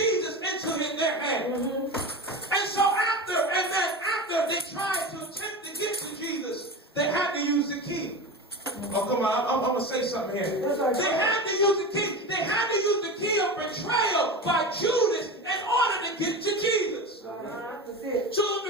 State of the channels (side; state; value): both; normal; correlation 0.26